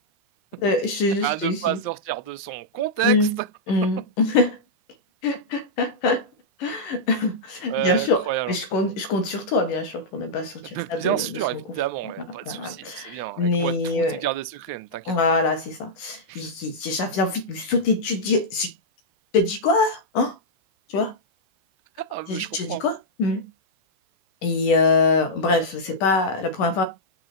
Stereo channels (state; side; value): late; right; 11 ms